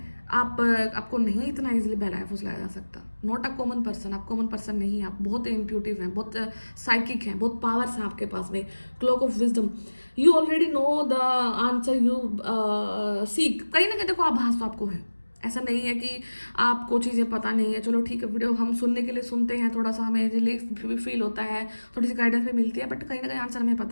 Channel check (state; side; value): inverted; both; correlation -1.00